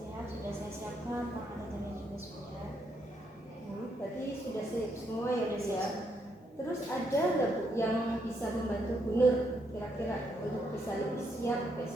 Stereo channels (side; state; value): both; normal; correlation 0.76